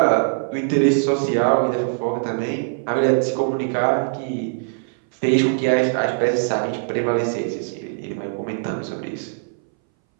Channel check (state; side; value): silent; left; 62 dB below the other